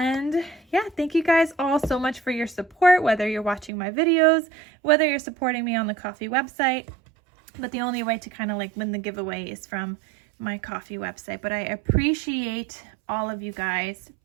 yeah, thank you guys all so much for your support, whether you're watching my videos, whether you're supporting me on the Kofi website. But the only way to kind of like win the giveaway is from my Kofi website. But I appreciate all of you guys.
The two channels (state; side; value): drops out; left; at 3.7 s